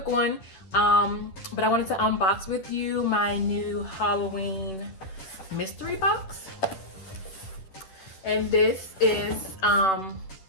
one, but I wanted to unbox with you my new Halloween mystery box. And this is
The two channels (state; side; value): late; right; 10 ms